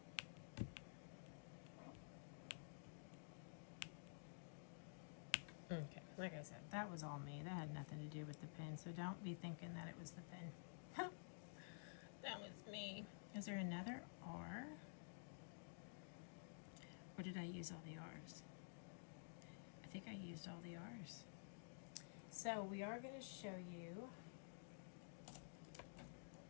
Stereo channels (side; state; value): right; silent; digital silence